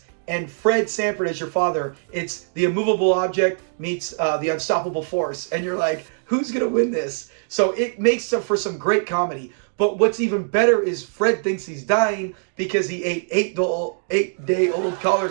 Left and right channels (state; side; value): silent; left; digital silence